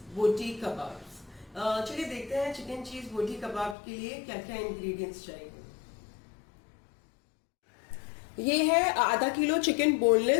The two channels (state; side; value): drops out; right; at 3.8 s